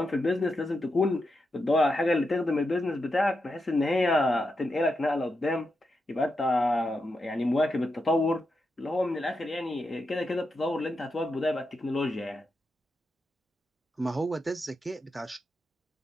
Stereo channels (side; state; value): both; normal; correlation 0.86